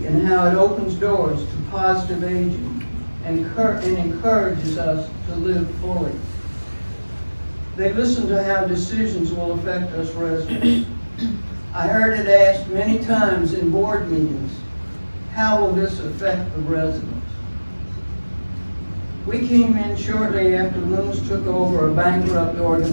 in how it opens doors to positive aging and encourages us to live fully. They listen to how decisions will affect us residents. I heard it asked many times in board meetings, how will this affect the residents? We came in shortly after Loomis took over a bankrupt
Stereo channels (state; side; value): inverted; both; correlation -1.00